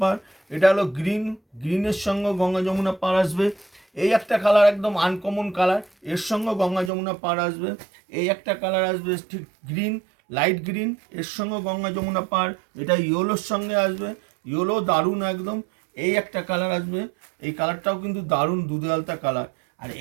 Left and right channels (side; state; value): left; drops out; at 6.9 s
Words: পার। এটা হলো গ্রিন, গ্রিনের সঙ্গে গঙ্গা যমুনা পার আসবে। এই একটা কালার একদম আনকমন কালার, এর সঙ্গে গঙ্গা যমুনা পার আসবে। এই একটা কালার আসবে ঠিক গ্রিন, লাইট গ্রিন, এর সঙ্গে গঙ্গা যমুনা পার। এটা ইয়েলোর সঙ্গে আসবে, ইয়েলো দারুণ একদম। এই একটা কালার আসবে, এই কালারটাও কিন্তু দারুণ দুধে আলতা কালার। আর